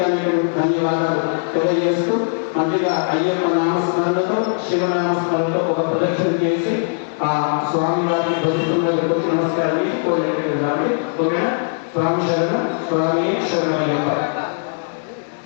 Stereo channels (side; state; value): right; silent; 64 dB below the other